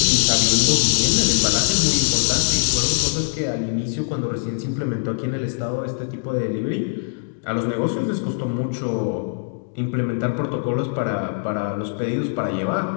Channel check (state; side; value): silent; right; digital silence